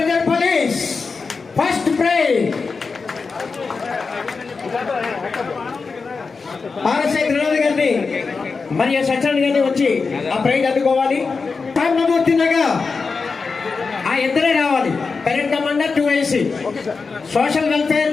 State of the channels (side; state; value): right; quieter; 4.7 dB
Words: police first prize RSI Trinath గారిని మరియు సత్యనారాయణ గారిని వచ్చి ఆ ప్రైజ్ అందుకోవాలి. నమూర్తినగా ఆ ఇద్దరే రావాలి. Parent commander 2AC social welfare